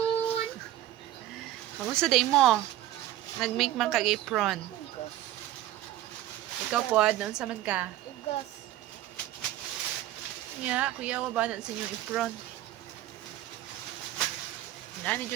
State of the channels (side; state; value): left; quieter; 13.7 dB